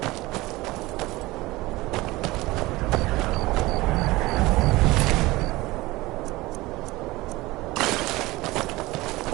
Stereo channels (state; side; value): quieter; left; 20.1 dB